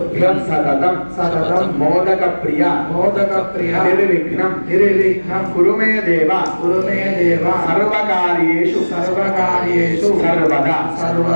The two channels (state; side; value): inverted; both; correlation -1.00